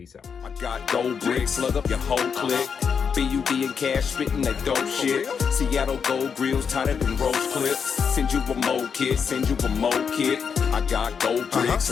out. I got gold bricks, slug up your whole clique. BUD and cash spitting that dope shit. Seattle Gold Grillz, tighter than roach clips. Send you a mo kit, send you a mo kit. I got gold bricks,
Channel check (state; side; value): quieter; right; 6.5 dB